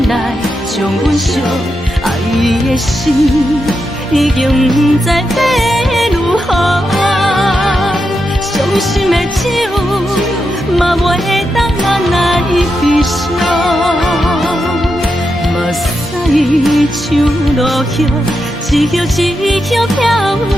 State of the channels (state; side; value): normal; both; correlation 0.86